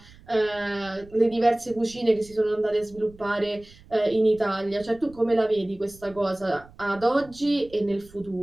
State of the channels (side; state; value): right; noise; rumble, 23 dB below the sound